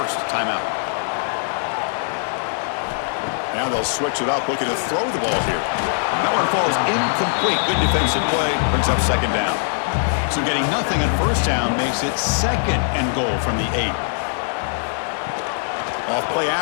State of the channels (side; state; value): right; silent; 65 dB below the other